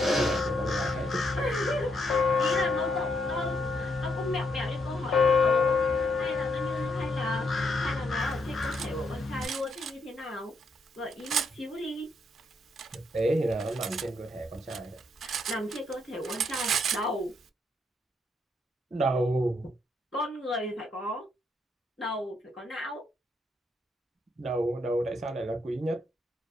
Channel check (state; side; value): normal; both; correlation 0.76